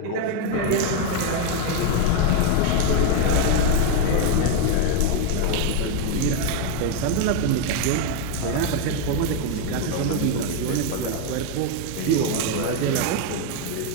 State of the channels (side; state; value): both; different; correlation 0.01